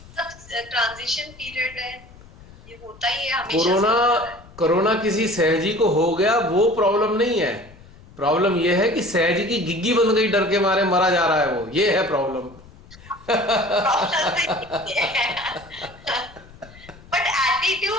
पीरियड है, ये होता ही है हमेशा। कोरोना किसी सहजी को हो गया वो प्रॉब्लम नहीं है। प्रॉब्लम ये है कि सहजी की गिग्गी बन गई, डर के मारे मरा जा रहा है, वो ये है प्रॉब्लम। बट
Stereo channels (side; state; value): left; noise; rumble, 22 dB below the sound